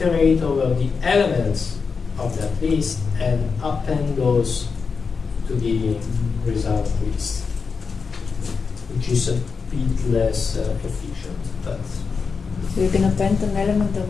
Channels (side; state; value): right; quieter; 5.2 dB